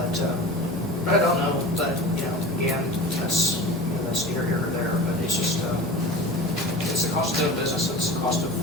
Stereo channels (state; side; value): normal; both; correlation 0.35